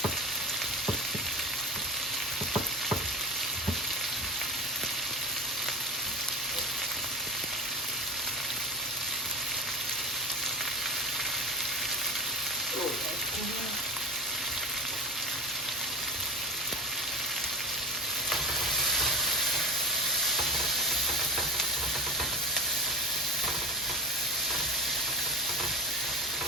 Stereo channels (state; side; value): normal; both; correlation 0.28